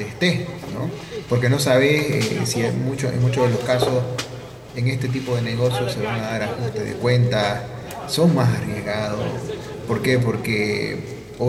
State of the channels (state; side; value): identical; both; correlation 1.00